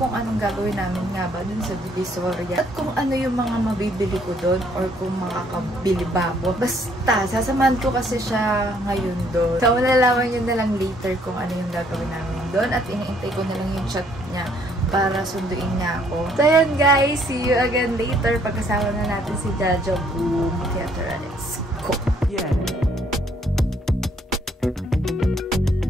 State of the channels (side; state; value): both; normal; correlation 0.65